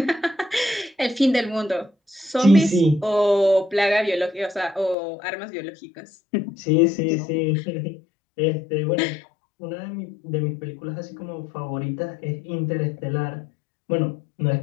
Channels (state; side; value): drops out; right; at 5.0 s